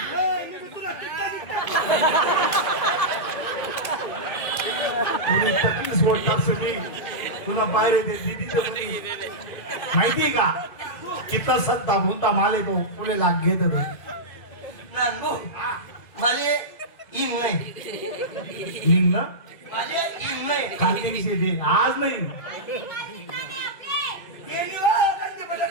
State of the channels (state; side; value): late; right; 2.1 ms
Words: तुला तकलीफ वाटत असेल, तुला बाहेर दे दीदीच्या मुली माहिती का कितना सत्ता भूनता माले तो तुले लाग घेत होतो. नानबू माले इन नाही. लिंग ना माले इन नाही. खाली दिवशी दे, आज नाही.